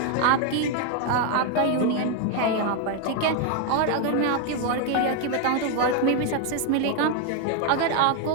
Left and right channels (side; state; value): both; different; correlation 0.01